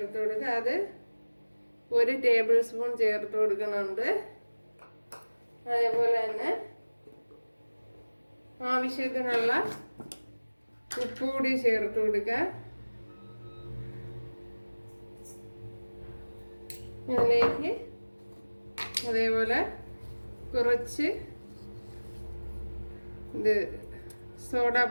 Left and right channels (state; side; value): inverted; both; correlation -1.00